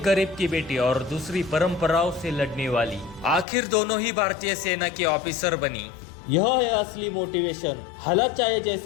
गरीब की बेटी और दूसरी परंपराओं से लड़ने वाली, आखिर दोनों ही भारतीय सेना के ऑफिसर बनी। यह है असली मोटिवेशन। हालात चाहे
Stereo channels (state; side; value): drops out; right; at 3.5 s